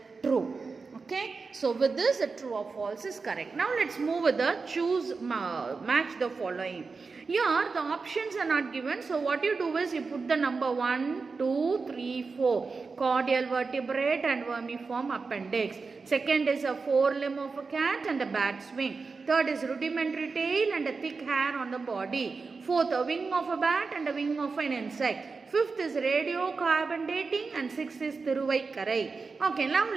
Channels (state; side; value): quieter; left; 4.5 dB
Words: true. Okay, so with this the true or false is correct. Now let's move with the choose match the following. Here the options are not given, so what you do is you put the number 1, 2, 3, 4 cordial vertebrate and vermiform appendix. Second is a forelimb of a cat and a bat's wing. Third is rudimentary tail and a thick hair on the body. Fourth, a wing of a bat and a wing of an insect. Fifth is radiocarbon dating, and sixth is Thiruvaikkarai. Okay, now